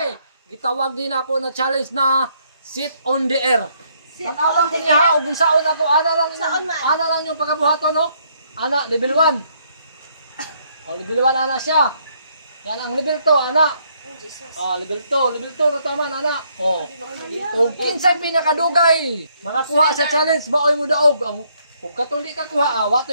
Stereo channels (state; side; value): inverted; both; correlation -0.70